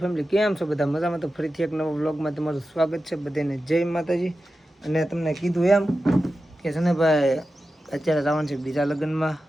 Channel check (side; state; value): both; normal; correlation 0.92